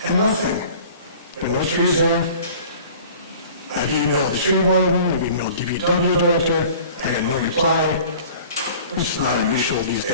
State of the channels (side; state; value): both; inverted; correlation -0.46